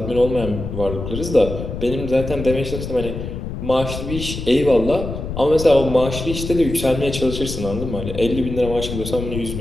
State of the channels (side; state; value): left; noise; rumble, 7 dB below the sound